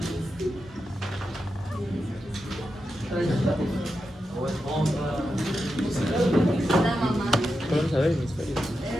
Vamos a ver hemisferios.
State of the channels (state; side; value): normal; both; correlation 0.88